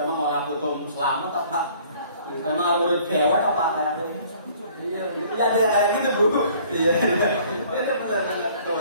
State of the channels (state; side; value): inverted; both; correlation -0.55